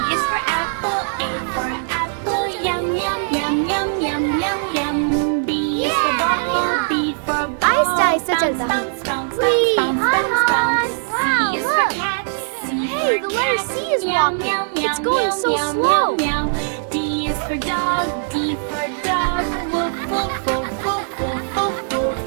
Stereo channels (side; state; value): left; silent; digital silence